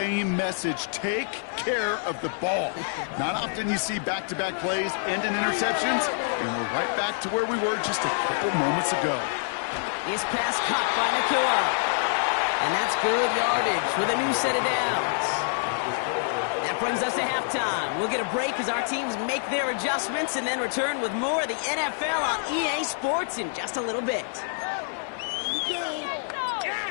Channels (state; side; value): silent; right; 60 dB below the other